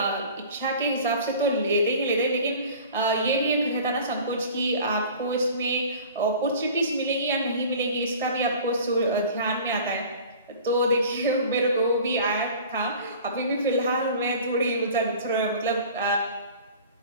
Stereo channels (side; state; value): both; inverted; correlation -0.43